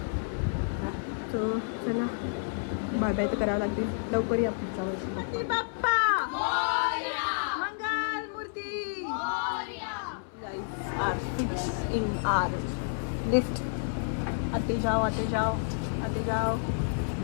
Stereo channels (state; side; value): silent; right; 58 dB below the other